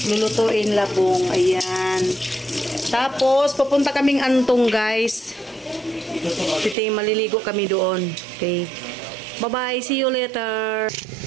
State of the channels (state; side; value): drops out; left; at 6.8 s